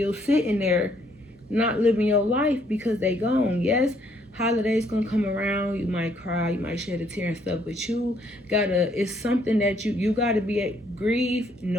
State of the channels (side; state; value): both; normal; correlation 0.68